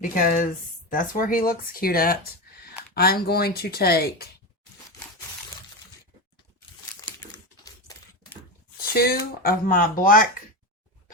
that's where he looks cute at, I'm going to take 2 of my black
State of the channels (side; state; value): both; normal; correlation 0.18